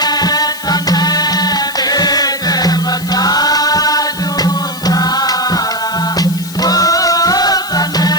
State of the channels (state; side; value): noise; left; hiss, 14 dB below the sound